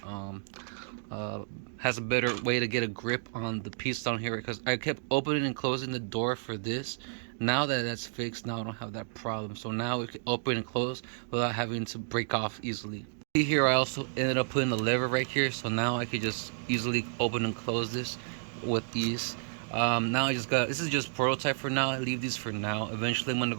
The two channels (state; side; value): silent; left; digital silence